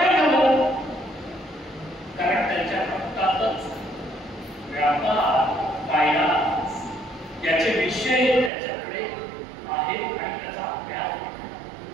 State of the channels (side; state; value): left; drops out; at 8.5 s